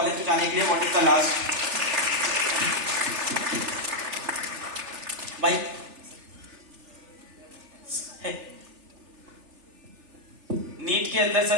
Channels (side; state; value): left; late; 3.4 ms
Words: में जाने के लिए व्हाट इज द लास्ट भाई? नीट के अंदर